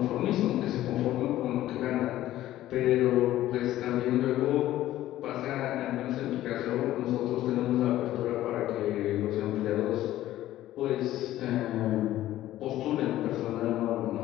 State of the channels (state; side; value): quieter; right; 14.2 dB